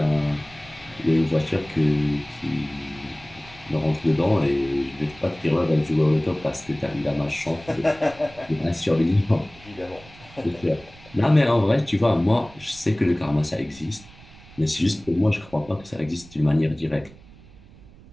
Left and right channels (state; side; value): noise; right; rumble, 22 dB below the sound